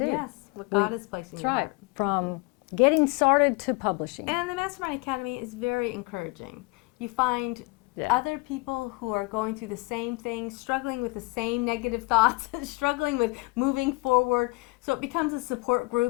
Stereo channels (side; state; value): right; quieter; 26.0 dB